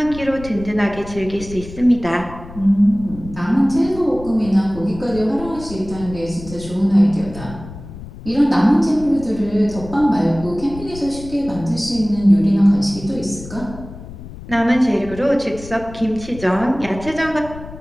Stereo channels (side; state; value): left; noise; rumble, 14 dB below the sound